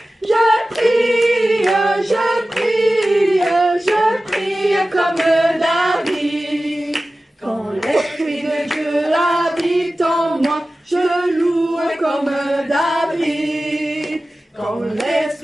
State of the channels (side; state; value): both; normal; correlation 0.96